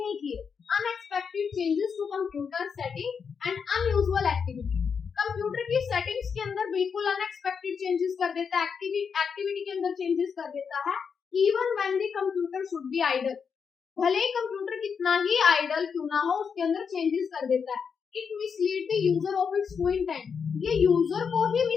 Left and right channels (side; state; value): right; quieter; 6.3 dB